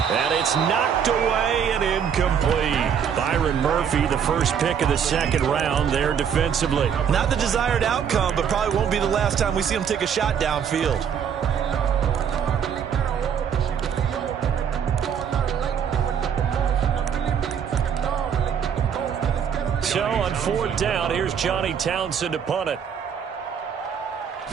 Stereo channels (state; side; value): quieter; left; 7.8 dB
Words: And it's knocked away and incomplete. Byron Murphy, the first pick of the 2nd round there defensively. Not the desired outcome, but probably won't be the last time we see him take a shot downfield. So on 4th down, here's Johnny Townsend to punt it.